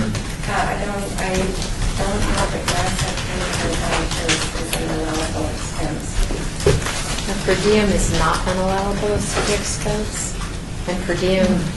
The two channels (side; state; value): both; identical; correlation 1.00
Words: I don't have the grant section is an allowable expense. Per diem is not an allowable expense, and per diem